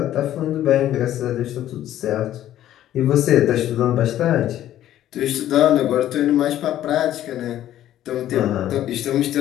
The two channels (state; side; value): quieter; right; 12.4 dB